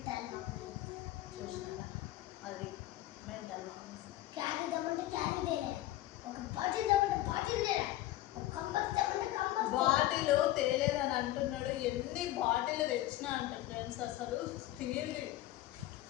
చూసినా అది మెంటల్ మామూలు. బాటిల్ తేలేదని అంటున్నాడు. ఎన్ని బాటిల్ తెచ్చినా అంట ఫ్రెండ్స్. అసలు స్టీల్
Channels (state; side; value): quieter; right; 15.3 dB